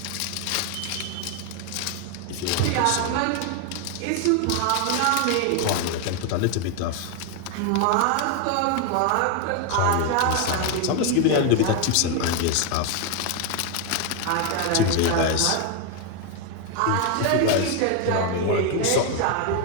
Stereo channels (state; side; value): different; both; correlation 0.01